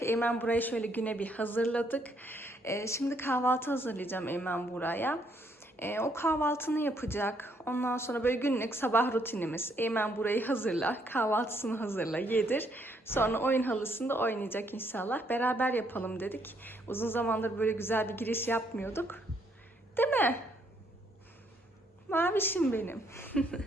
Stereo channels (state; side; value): normal; both; correlation 0.71